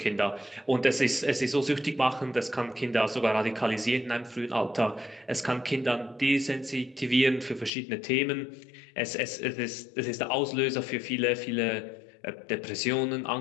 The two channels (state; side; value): drops out; right; at 7.7 s